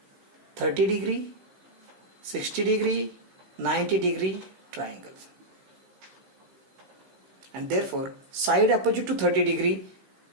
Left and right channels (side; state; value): left; late; 16 ms